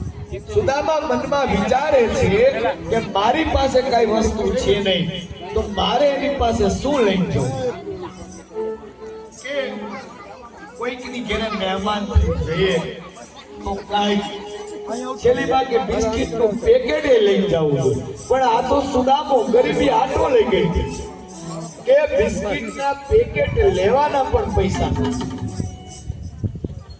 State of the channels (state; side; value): identical; both; correlation 1.00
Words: સુદામા મનમાં વિચારે છે કે મારી પાસે કઈ વસ્તુ છે નહીં, તો મારે એની પાસે શું લઈને જવું? કે કોઈકની ઘરે મહેમાન જઈએ તો કઈ છેલ્લી ભાગે બિસ્કિટ નું પેકેટ લઈ જવું, પણ આ તો સુદામો ગરીબી આટો લઈ ગઈ કે બિસ્કિટ ના પેકેટ લેવાના પણ પૈસા.